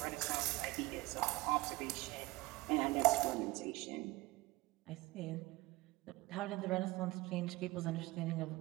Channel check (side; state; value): left; quieter; 20.4 dB